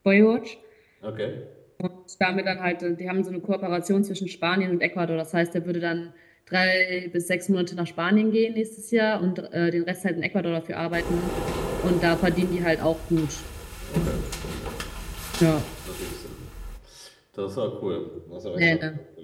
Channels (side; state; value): both; identical; correlation 1.00